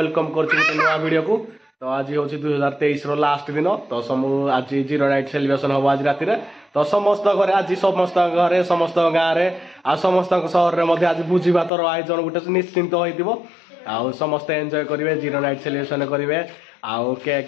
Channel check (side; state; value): right; drops out; at 11.7 s